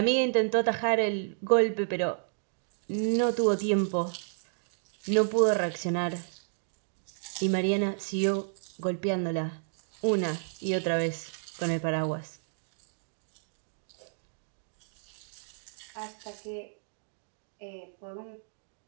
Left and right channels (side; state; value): left; silent; digital silence